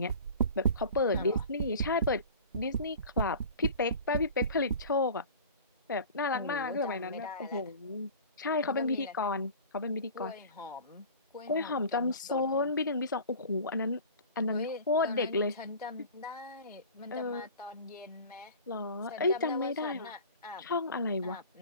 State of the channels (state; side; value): inverted; both; correlation -0.39